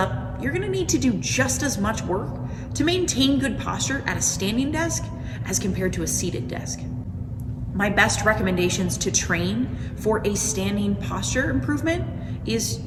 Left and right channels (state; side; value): identical; both; correlation 1.00